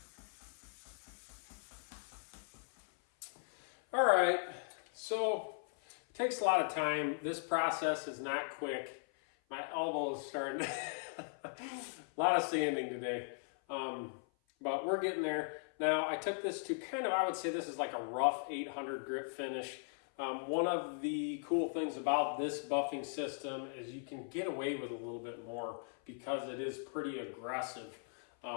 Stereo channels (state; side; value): silent; right; 52 dB below the other